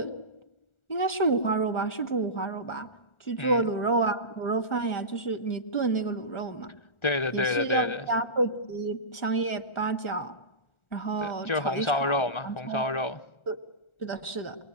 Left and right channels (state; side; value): late; right; 1.4 ms